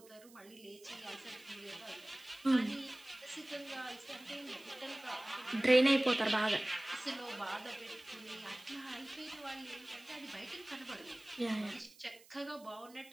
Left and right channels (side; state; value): right; noise; hiss, 23 dB below the sound